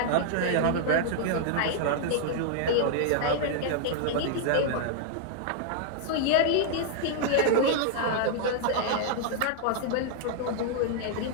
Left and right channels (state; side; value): different; both; correlation -0.01